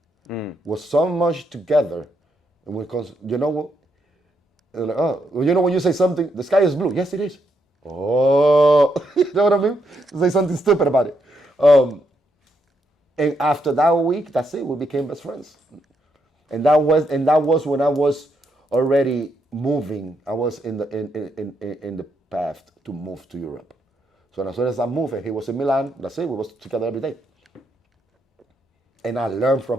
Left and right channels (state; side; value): normal; both; correlation 0.78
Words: was so much together, and because you know what, like, when you say something, the sky is blue. Yes, it is. Oh, you know what I mean? Say something stupid about it. And after that week, that's it. We became best friends. And that was when I was already moving. I was in the path to move to Europe. So as soon as I moved, he was in Milan. That's it. We was together every day. And I learned